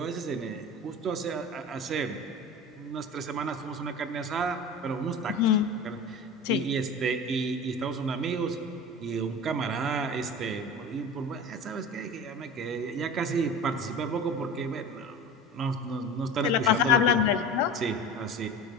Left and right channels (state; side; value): normal; both; correlation 0.32